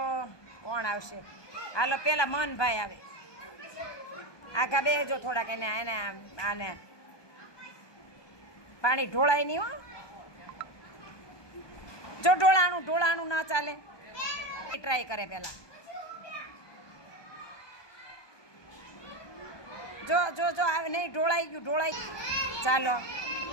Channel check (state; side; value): late; right; 1.2 ms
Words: કોણ આવશે? હાલો પેલા મનભાઈ આવે. આખા બેજો થોડાક એને એને આને પાણી ઢોળાય નહીં હો. જો ઢોળાણું ના ચાલે. ટ્રાય કરે પેલા. જો જો જો નહીં ઢોળાઈ ગયું. ચાલો